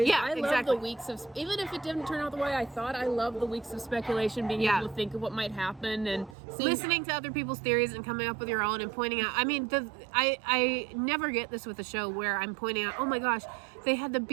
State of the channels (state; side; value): drops out; left; at 6.4 s